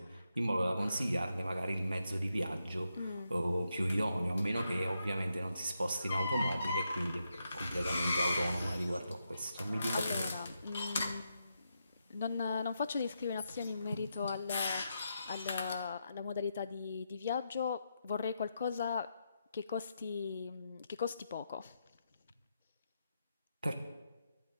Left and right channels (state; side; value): inverted; both; correlation -0.84